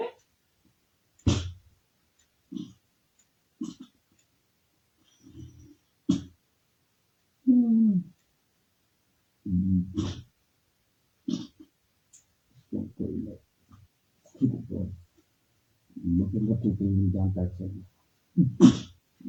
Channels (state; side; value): identical; both; correlation 1.00